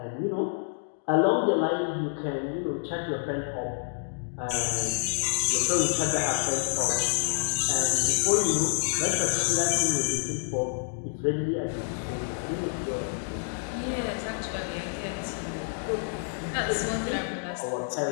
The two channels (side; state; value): right; silent; digital silence